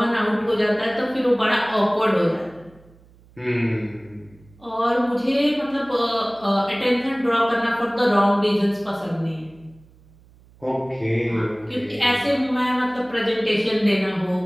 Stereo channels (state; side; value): noise; right; hum, 27 dB below the sound